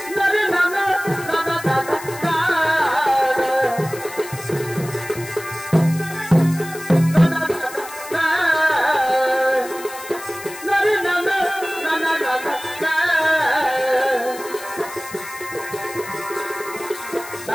নরে নানা নানা নানা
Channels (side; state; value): left; noise; hiss, 15 dB below the sound